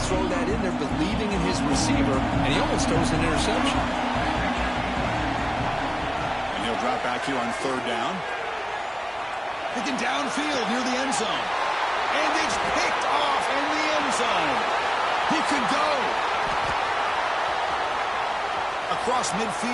throw that in there, believing in his receiver, and he almost throws an interception. And he'll drop back here on third down. Picking downfield near the end zone. And it's picked off in the end zone. He could go. Across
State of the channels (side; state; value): both; identical; correlation 1.00